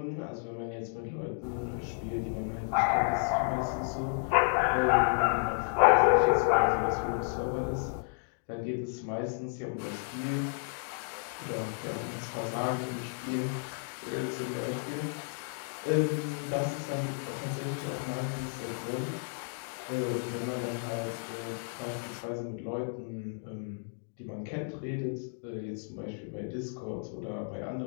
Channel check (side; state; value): right; silent; digital silence